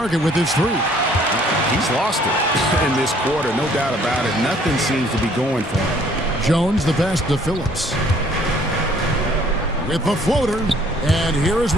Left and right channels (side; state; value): both; normal; correlation 0.59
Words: with his 3. He's lost it in this quarter, no doubt about it. Nothing seems to be going for him. Jones the pass to Phillips. With the floater. And here is